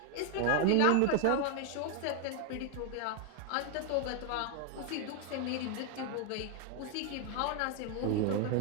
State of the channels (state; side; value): different; both; correlation 0.00